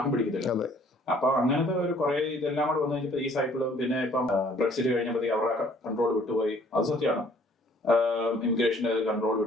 പിടിക്കത്തില്ല. അപ്പൊ അങ്ങനത്തെ ഒരു കുറെ ഇതെല്ലാം കൂടെ വന്നു കഴിഞ്ഞപ്പോ ഈ സൈക്കിളും, പിന്നെ ഇപ്പം ബ്രെക്സിറ്റ് കഴിഞ്ഞപ്പോഴത്തേക്ക് അവരുടെ കൺട്രോൾ വിട്ടുപോയി. അത് സത്യമാണ്, ഇമിഗ്രേഷന്റെ കൺട്രോൾ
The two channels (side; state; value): both; normal; correlation 0.58